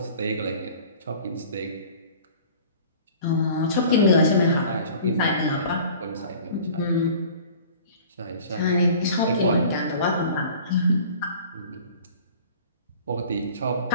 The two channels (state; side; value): inverted; both; correlation -0.46